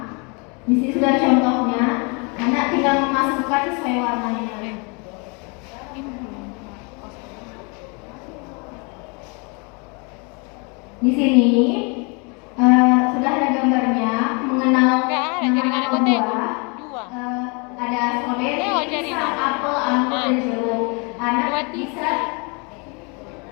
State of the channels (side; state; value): right; quieter; 32.3 dB